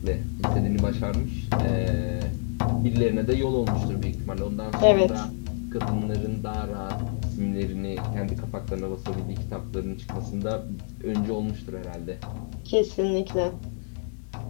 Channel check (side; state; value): right; silent; 60 dB below the other